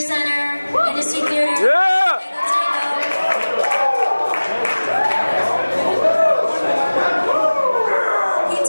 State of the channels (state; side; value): inverted; both; correlation -1.00